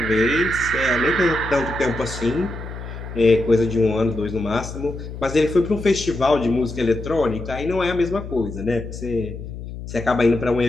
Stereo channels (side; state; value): left; noise; hum, 10 dB below the sound